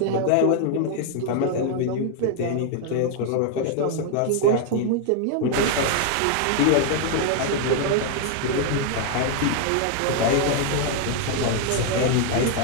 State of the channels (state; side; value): different; both; correlation 0.00